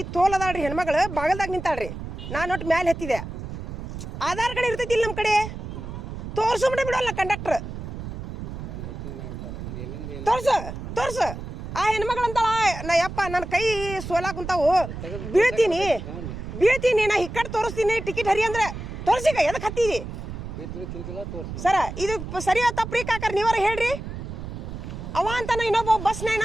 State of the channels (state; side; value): noise; right; rumble, 8 dB below the sound